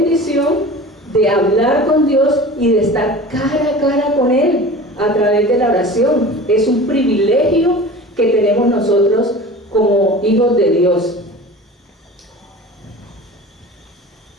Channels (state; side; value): normal; both; correlation 0.37